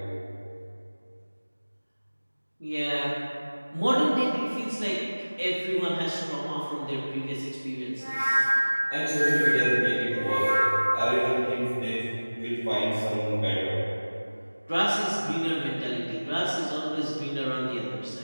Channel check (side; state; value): both; inverted; correlation -1.00